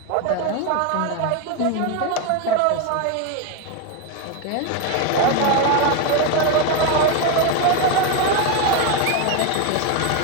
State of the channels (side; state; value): both; different; correlation 0.02